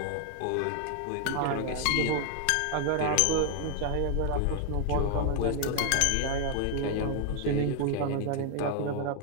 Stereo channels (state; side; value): different; both; correlation 0.00